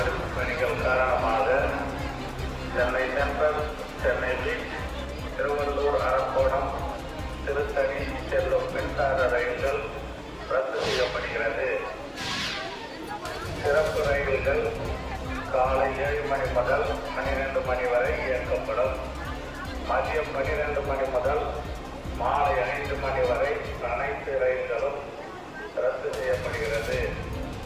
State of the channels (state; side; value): identical; both; correlation 1.00